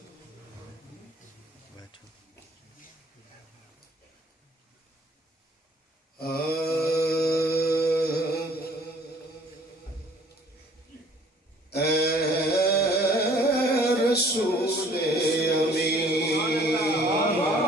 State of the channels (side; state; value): both; normal; correlation 0.56